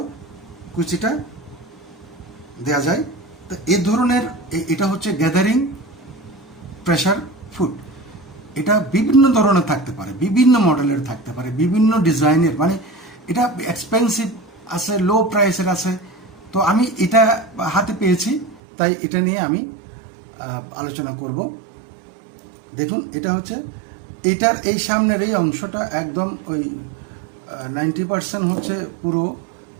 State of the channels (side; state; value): left; drops out; at 18.6 s